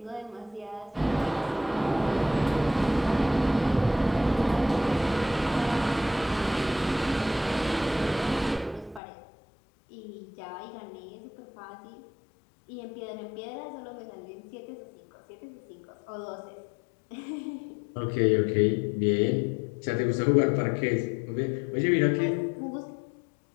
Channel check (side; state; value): right; drops out; at 9.0 s